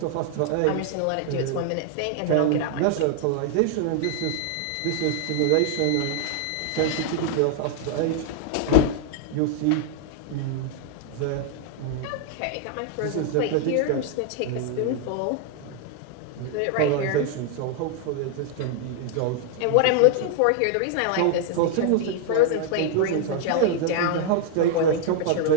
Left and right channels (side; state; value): both; different; correlation 0.00